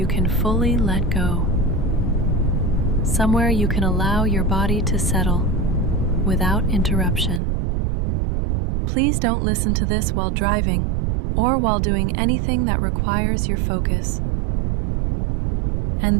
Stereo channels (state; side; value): drops out; left; at 7.4 s